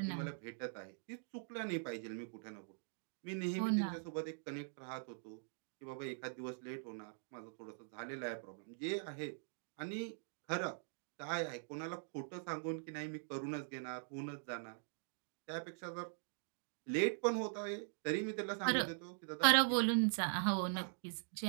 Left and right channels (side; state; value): left; silent; digital silence